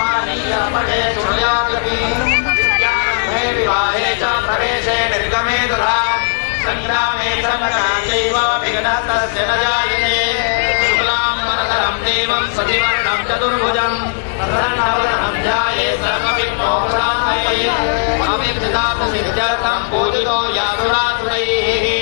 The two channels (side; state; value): right; silent; digital silence